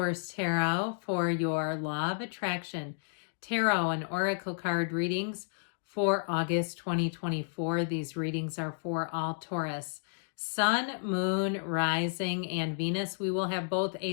Tarot for your Law of Attraction Tarot and Oracle card readings for August 2024. These readings are for all Taurus. Sun, Moon, Rising, and Venus. We will have both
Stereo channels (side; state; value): right; silent; digital silence